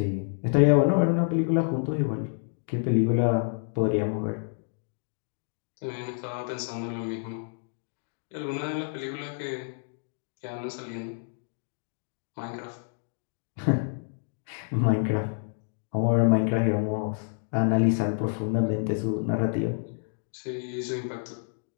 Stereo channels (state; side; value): silent; right; digital silence